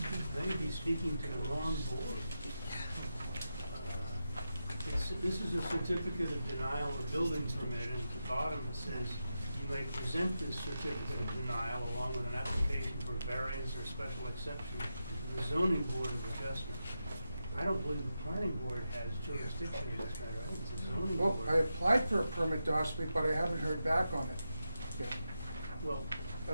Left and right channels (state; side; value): inverted; both; correlation -0.89